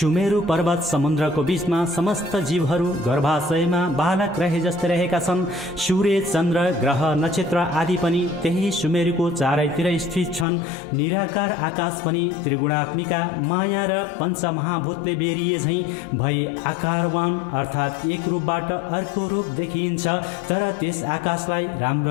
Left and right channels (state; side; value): drops out; right; at 10.5 s